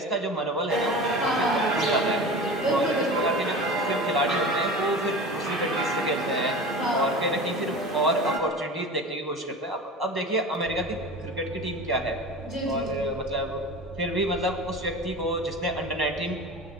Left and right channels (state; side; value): normal; both; correlation 0.33